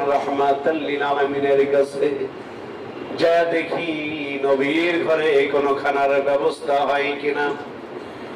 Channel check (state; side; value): identical; both; correlation 1.00